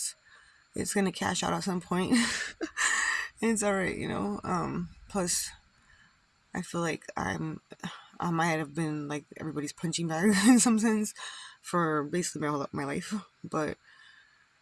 It's gonna cash out at some point. It's alright, plus, I feel like I might have been like everybody's punching bag in some sense for basically my life, but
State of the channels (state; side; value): identical; both; correlation 1.00